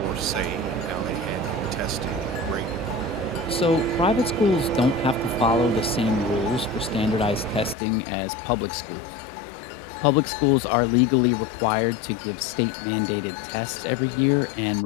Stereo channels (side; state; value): right; drops out; at 7.8 s